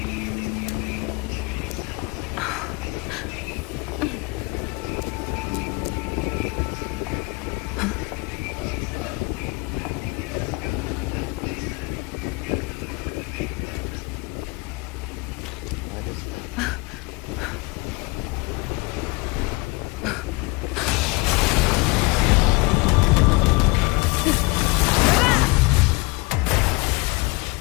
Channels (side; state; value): right; quieter; 25.8 dB